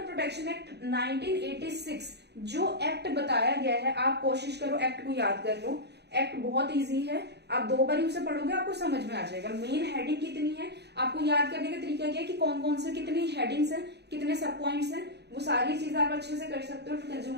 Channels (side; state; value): left; late; 0.49 ms